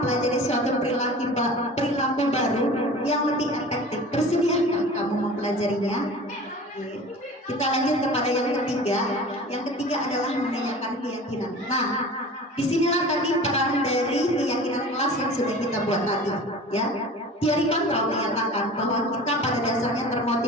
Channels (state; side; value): normal; both; correlation 0.39